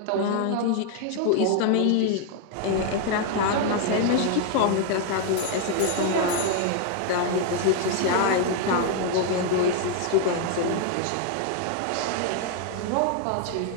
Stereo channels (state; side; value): different; both; correlation 0.00